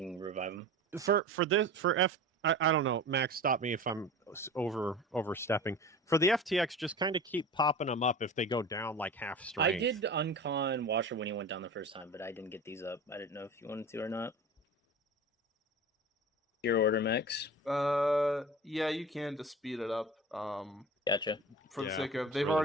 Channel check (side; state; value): both; normal; correlation 0.35